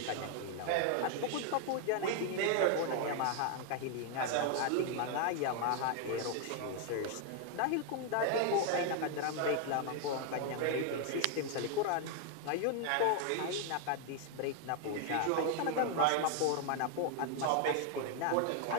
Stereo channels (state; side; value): different; both; correlation 0.00